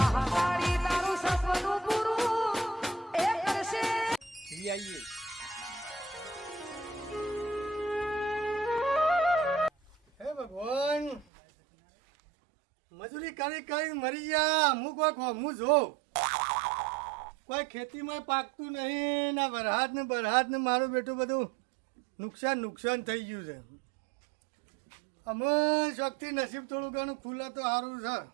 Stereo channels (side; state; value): left; drops out; at 11.2 s